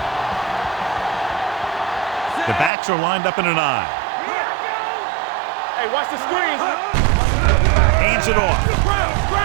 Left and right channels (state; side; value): drops out; left; at 2.7 s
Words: The backs are lined up in an I. Hey, watch the screens. Hands it off.